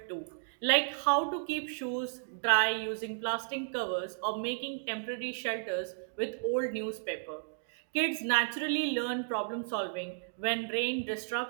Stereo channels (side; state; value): left; silent; digital silence